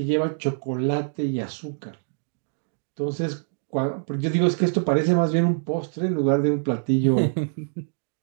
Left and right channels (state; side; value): silent; left; digital silence